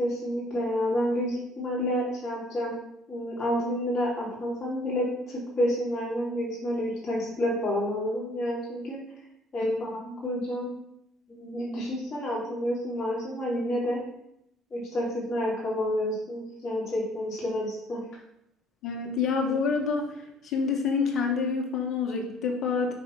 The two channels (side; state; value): both; normal; correlation 0.59